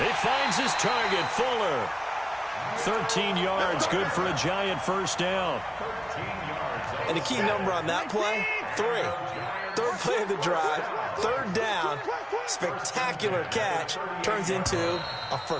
He finds his target, Fuller. 13 yards, good for a Giant first down. And the key number on that play, 3. 3rd play of the drive, 3rd down, spectacular catch, turns into a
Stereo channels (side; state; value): both; identical; correlation 1.00